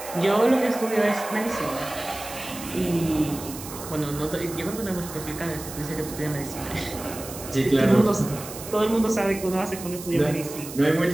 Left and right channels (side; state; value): right; noise; hiss, 12 dB below the sound